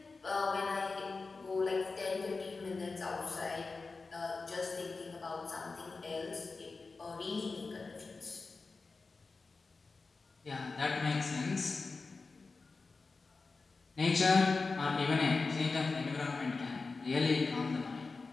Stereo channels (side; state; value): right; quieter; 4.1 dB